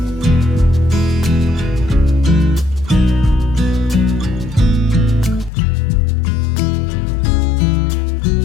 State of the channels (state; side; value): drops out; right; at 5.5 s